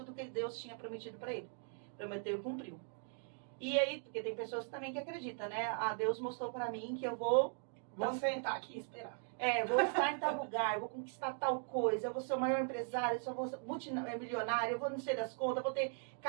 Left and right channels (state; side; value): silent; left; 52 dB below the other